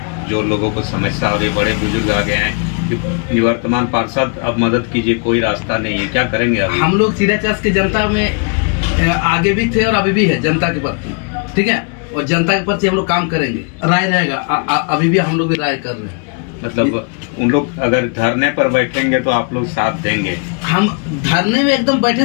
जो लोगों को समस्या हो रही है, बड़े बुजुर्ग आ गए हैं। निवर्तमान पार्षद अब मदद कीजिए, कोई रास्ता नहीं है, क्या करेंगे अभी? हम लोग चीराचास की जनता में आगे भी थे और अभी भी है जनता के प्रति, ठीक है, और जनता के प्रति हम लोग काम करेंगे। राय रहेगा, अभी भी हम लोग भी राय कर रहे हैं। मतलब उन लोग अगर धरने पर बैठेंगे तो आप लोग साथ देंगे? हम धरने में एकदम बैठे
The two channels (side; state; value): right; quieter; 38.6 dB